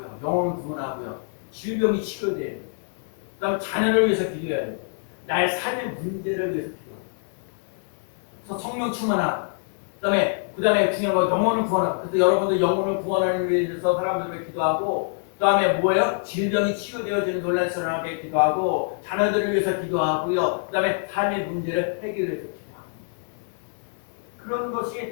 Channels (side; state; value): right; silent; digital silence